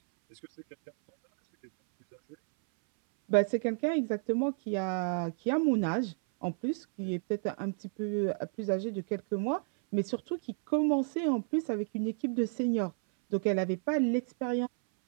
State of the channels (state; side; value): silent; left; 57 dB below the other